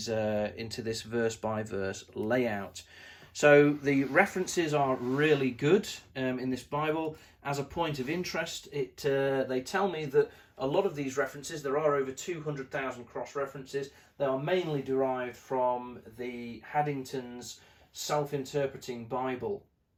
verse by verse layout. So the references are really good in this Bible. As a point of interest, they tell me that a lot of these references, there are over 200,000 cross-references, they are mainly derived from the Haddington's Self-Interpreting Bible.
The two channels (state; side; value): identical; both; correlation 1.00